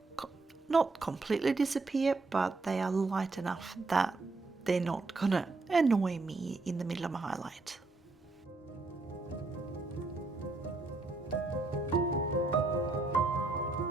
not completely disappear, but they are light enough that they're not gonna annoy me in the middle of my highlight.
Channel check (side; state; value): left; quieter; 3.5 dB